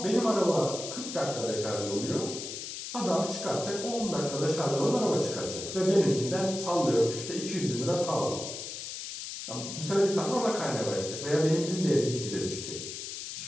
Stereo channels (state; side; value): noise; left; hiss, 8 dB below the sound